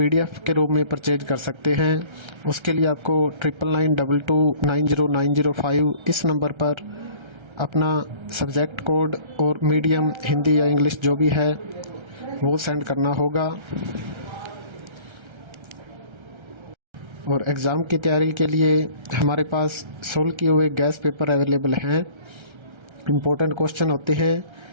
के रूप में परचेज कर सकते हैं। उसके लिए आपको 9992290905 इस नंबर पर अपना सब्जेक्ट कोड और मीडियम हिंदी या इंग्लिश जो भी है वो सेंड करना होगा। और एग्ज़ाम की तैयारी के लिए हमारे पास सोल्व किए हुए गैस पेपर अवेलेबल हैं। इम्पोर्टेंट क्वेश्चन होते हैं,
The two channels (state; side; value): late; left; 1.3 ms